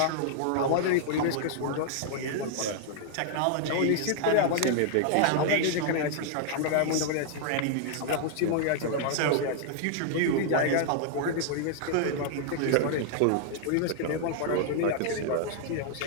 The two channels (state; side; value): different; both; correlation 0.00